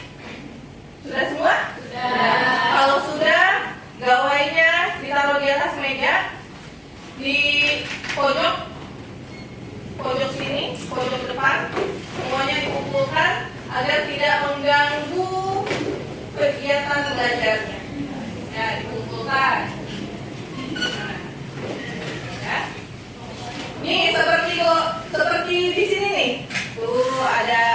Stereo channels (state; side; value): identical; both; correlation 1.00